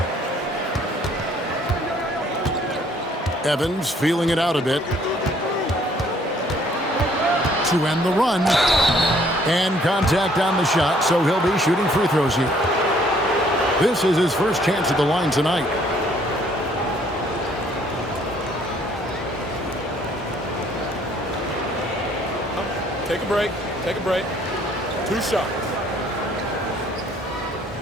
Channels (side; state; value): both; normal; correlation 0.62